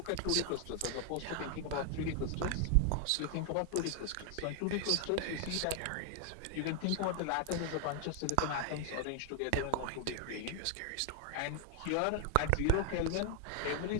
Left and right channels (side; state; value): both; different; correlation 0.00